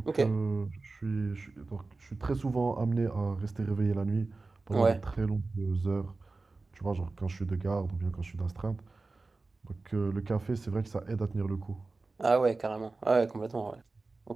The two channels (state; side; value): quieter; left; 3.6 dB